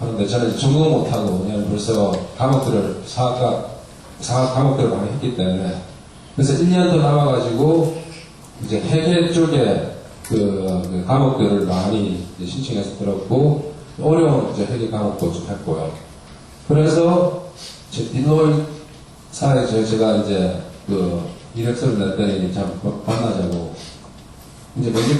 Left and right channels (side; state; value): both; identical; correlation 1.00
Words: 저는 전공을 못하고 그냥 벌써 사학 과목들을 많이 했기 때문에 그래서 1년 더 남아가지고 이제 회계 쪽에 그 과목들을 많이 이제 신청해서 들었고 어려운 이제 회계 과목도 좀 했고요. 그래서 디노이사에 제가 이제 이력서를 냈더니 참 만나자고 이제